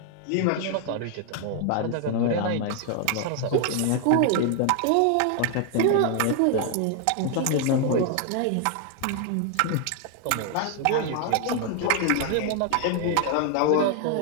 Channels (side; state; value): both; different; correlation 0.00